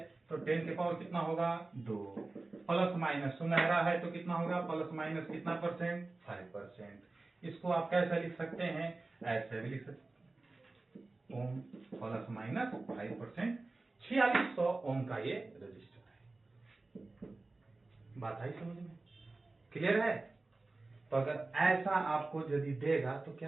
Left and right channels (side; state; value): left; quieter; 3.3 dB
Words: तो 10 के पावर कितना होगा, 2। प्लस माइनस, सुनहरा है तो कितना होगा, प्लस माइनस कितना परसेंट, 5%। इसको आप कैसे लिख सकते हैं, ऐसे भी लिख सकते हैं, ओम प्लस माइनस 5%, 4600 ओम का ये रजिस्टर है। बात आई समझ में, क्लियर है। तो अगर ऐसा आपको यदि देगा तो